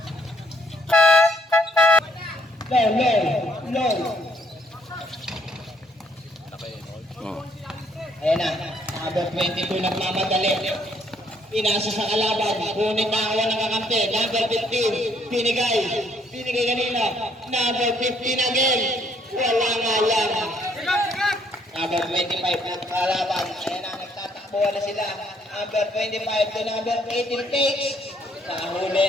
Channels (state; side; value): normal; both; correlation 0.67